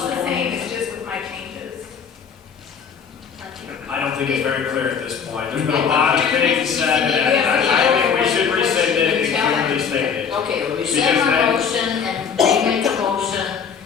this the point? same, it's just with my changes. I don't think it's very clear at this point. There's been a lot of things said, and I think we should rescind it and clearly state it. Okay, we Because rescind our then- motion and remake a motion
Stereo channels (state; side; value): quieter; right; 6.7 dB